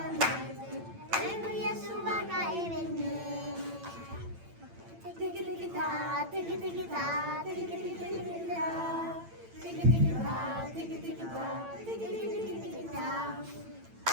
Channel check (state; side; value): late; left; 8.9 ms